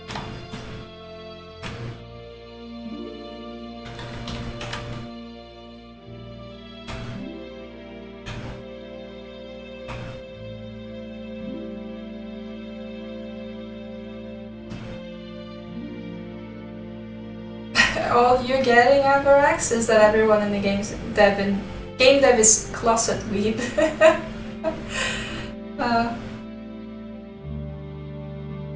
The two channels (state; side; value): identical; both; correlation 1.00